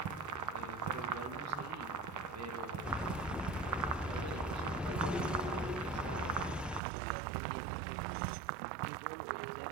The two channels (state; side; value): drops out; left; at 6.8 s